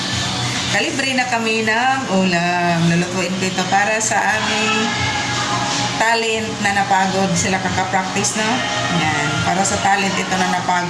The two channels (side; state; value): both; identical; correlation 1.00